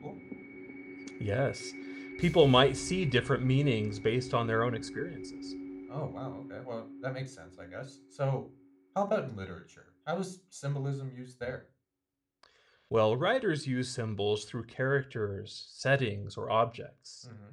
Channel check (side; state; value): both; identical; correlation 1.00